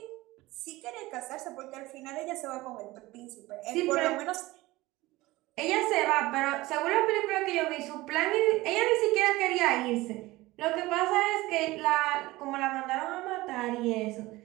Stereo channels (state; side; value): quieter; left; 19.4 dB